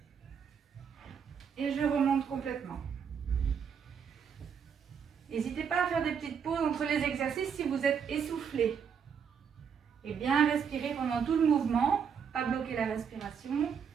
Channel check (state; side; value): quieter; left; 7.0 dB